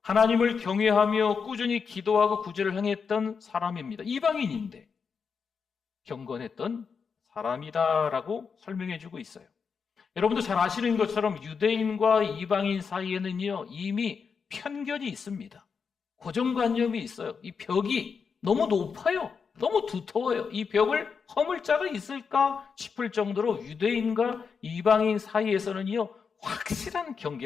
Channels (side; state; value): right; quieter; 5.8 dB